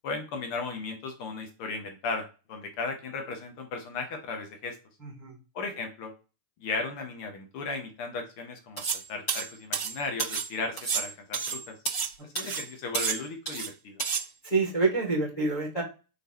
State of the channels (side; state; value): right; late; 6.8 ms